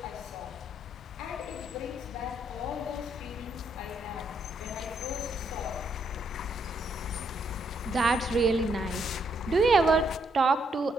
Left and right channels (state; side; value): normal; both; correlation 0.74